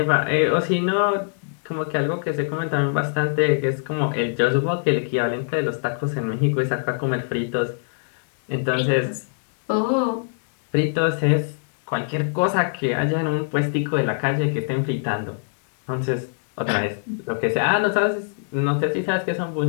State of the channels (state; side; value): silent; right; digital silence